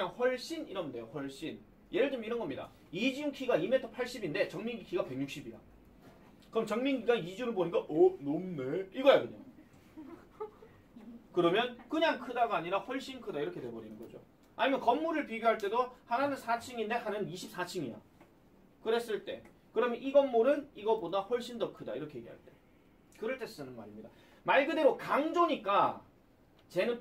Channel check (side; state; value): both; identical; correlation 1.00